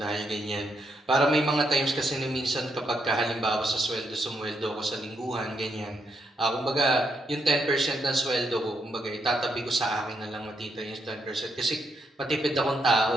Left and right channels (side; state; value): both; normal; correlation 0.78